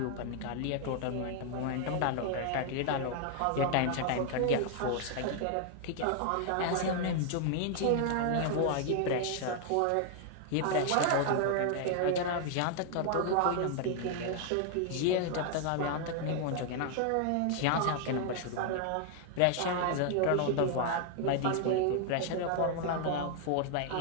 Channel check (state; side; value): different; both; correlation 0.00